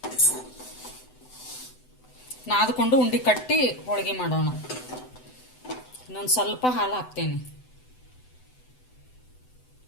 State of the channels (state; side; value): late; right; 7.9 ms